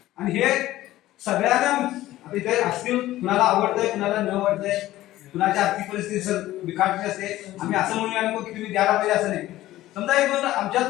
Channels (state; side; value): quieter; right; 15.4 dB